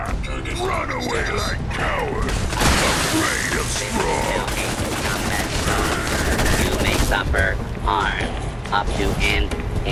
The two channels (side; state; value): both; identical; correlation 1.00